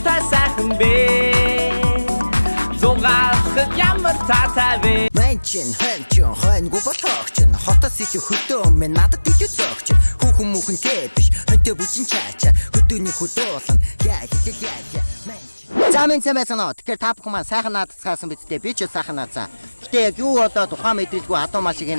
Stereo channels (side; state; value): both; inverted; correlation -1.00